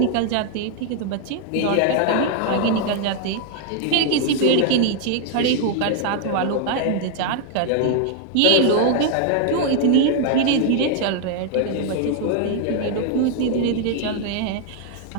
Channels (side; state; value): both; different; correlation 0.00